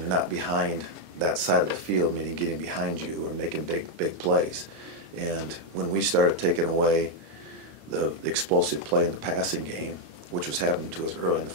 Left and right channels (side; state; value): left; late; 26 ms